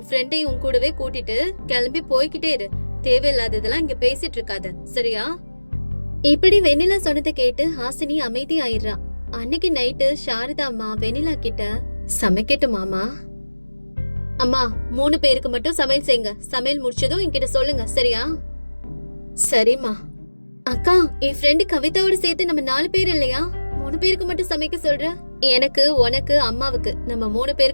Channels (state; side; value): inverted; both; correlation -1.00